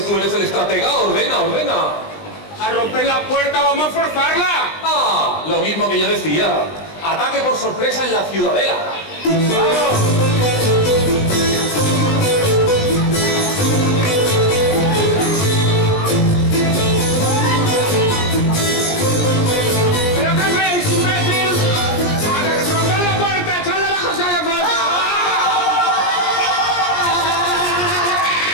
tú eres el estratega, ordena. ¡A romper la puerta, vamos a forzarla! Lo mismo que yo decía. Ataque por sorpresa en la ciudadela. ¡Vamos!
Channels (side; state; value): right; late; 20 ms